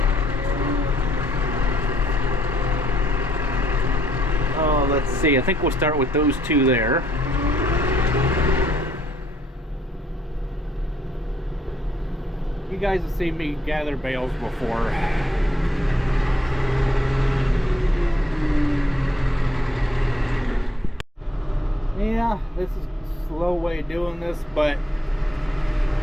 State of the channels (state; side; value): normal; both; correlation 0.70